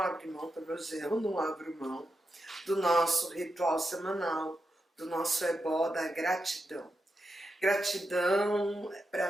mão, pelo menos eu não abro mão, do nosso ritual semanal, do nosso ebó da gratidão. Gratidão,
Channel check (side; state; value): both; normal; correlation 0.87